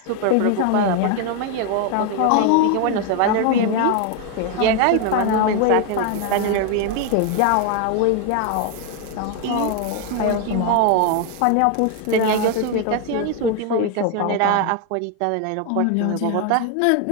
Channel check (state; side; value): different; both; correlation 0.01